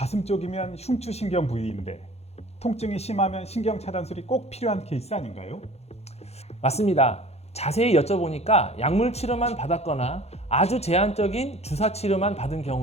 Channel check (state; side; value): late; right; 0.31 ms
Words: 쪽이면 흉추신경 부위인데 통증이 심하면 신경차단술이 꼭 필요한 케이스 아닌가요? 맞습니다. 자세히 여쭤보니까 약물 치료만 받았거나 아주 제한적인 주사 치료만 받은